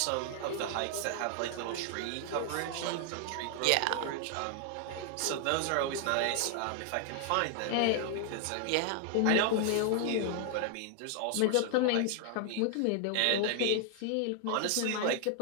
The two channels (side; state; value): both; different; correlation 0.00